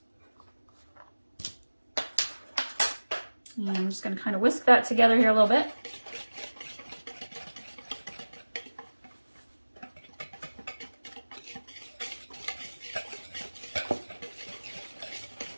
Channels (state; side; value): inverted; both; correlation -1.00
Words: And I'm just going to kind of whisk that together here a little bit.